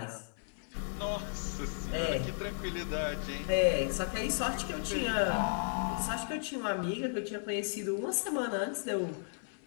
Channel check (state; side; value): silent; right; 55 dB below the other